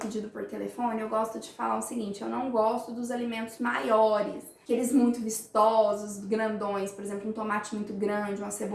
por telefone, eu gosto de falar o seguinte, eu não gosto dos alimentos maiores, aqueles muito vistosos, grandões, por exemplo, um tomate muito grande, uma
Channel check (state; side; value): identical; both; correlation 1.00